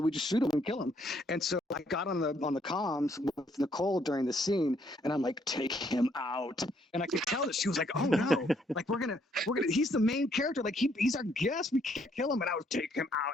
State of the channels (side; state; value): both; normal; correlation 0.69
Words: we just shoot them and kill them. And so I got on the comms with Nicole during the scene, and I'm like, take him out. And I could tell that she was like, oh no, like we're gonna. He's the main character. Like he's our guest. We can't kill him. And I was take him out.